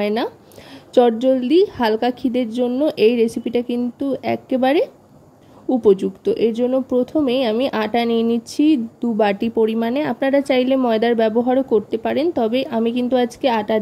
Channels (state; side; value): identical; both; correlation 1.00